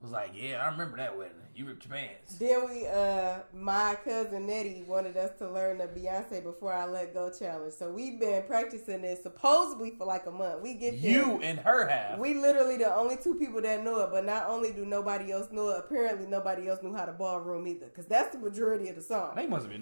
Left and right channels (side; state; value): both; inverted; correlation -1.00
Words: like, yeah, I remember that wedding. You ripped your pants. Then my cousin Nettie wanted us to learn the Beyonce Before I Let Go challenge. So we've been practicing this supposedly for like a month. We get there. You and her have. We literally the only two people that know it. But not only do nobody else know it, apparently nobody else knew how to ballroom either. Because that's the majority of the song. They must have